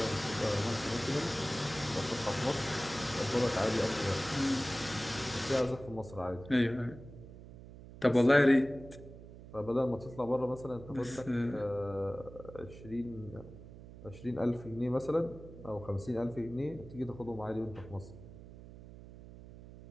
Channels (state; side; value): noise; right; hum, 16 dB below the sound